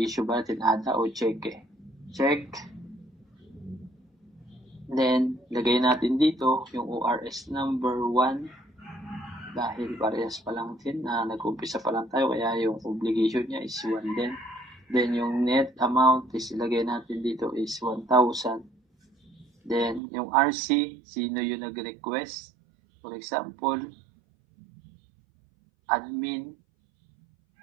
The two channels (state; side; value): drops out; left; at 20.0 s